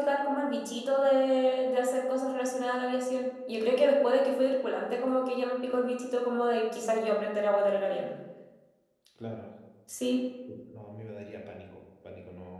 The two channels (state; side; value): identical; both; correlation 1.00